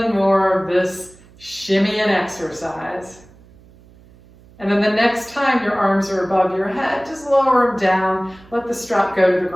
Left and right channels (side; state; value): right; noise; hum, 25 dB below the sound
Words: more of this shimmy and exercise. And then the next time your arms are above your head, just lower them down. Let the strap go to the